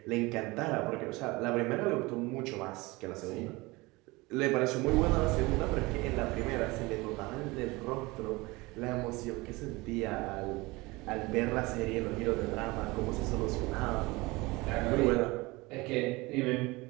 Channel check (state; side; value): quieter; left; 22.9 dB